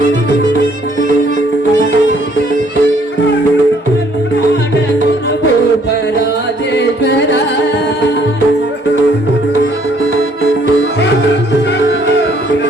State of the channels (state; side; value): normal; both; correlation 0.64